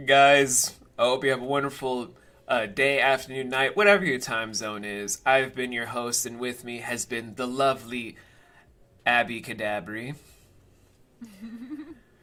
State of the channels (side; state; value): both; identical; correlation 1.00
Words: guys, I hope you have a wonderful day, afternoon, night, whatever your time zone is. I've been your host, and with me has been the lovely Abicadabri. It's